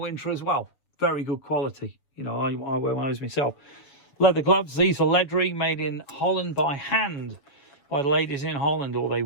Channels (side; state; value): right; late; 6.8 ms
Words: as well. Very good quality. You know, I wear one of those myself. Leather gloves. These are leathery, made in Holland by hand. By the ladies in Holland, or they